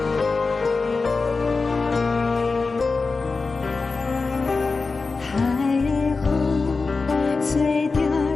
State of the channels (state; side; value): quieter; right; 4.1 dB